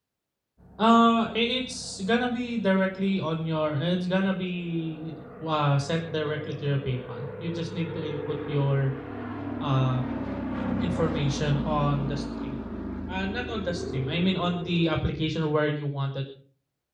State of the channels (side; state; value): both; identical; correlation 1.00